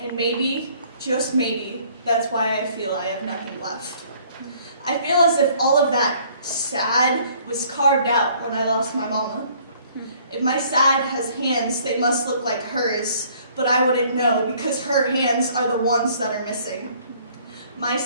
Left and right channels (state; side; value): inverted; both; correlation -0.59